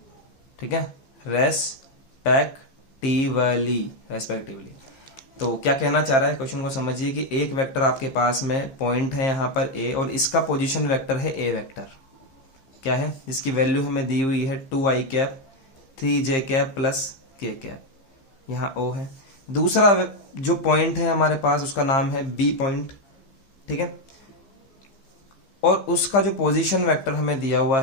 ठीक है, रेस्पेक्टिवली। तो क्या कहना चाह रहा है, क्वेश्चन को समझिए कि एक वेक्टर आपके पास में पॉइंट है यहाँ पर ए, और इसका पोजीशन वेक्टर है ए वेक्टर, क्या है, जिसकी वैल्यू हमें दी हुई है 2i cap 3j cap plus k cap, यहाँ ओ है। दूसरा जो पॉइंट है हमारे पास उसका नाम है बी पॉइंट, ठीक है, और उसका जो पोजीशन वेक्टर हमें दिया हुआ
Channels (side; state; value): right; late; 15 ms